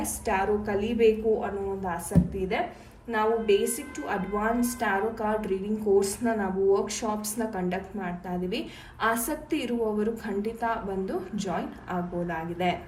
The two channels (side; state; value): both; identical; correlation 1.00